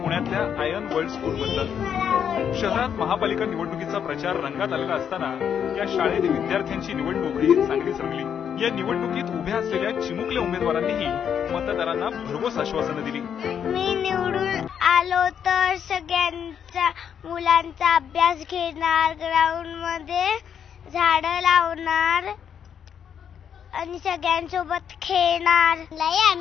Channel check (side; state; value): right; quieter; 8.2 dB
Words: आयन वर्ल्ड स्कूल मधलं। शहरात महापालिका निवडणुकीचा प्रचार रंगात आलेला असताना या शाळेत विद्यार्थ्यांची निवडणूक ही चांगलीच रंगली। या निवडणुकीत उभ्या असलेल्या चिमुकल्या उमेदवारांनीही मतदारांना भरघोस आश्वासनं दिली। मी निवडून आलो तर सगळ्यांचा मुलांचा अभ्यास घेणार, ग्राउंड मध्ये झाडं लावणार आणि सगळ्यांसोबत खेळणार। लय